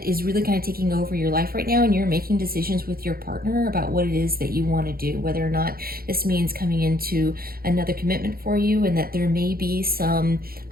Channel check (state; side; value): late; left; 0.43 ms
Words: is really kind of taking over your life right now, and you're making decisions with your partner about what it is that you want to do, whether or not this means coming into another commitment for you, and that there may be some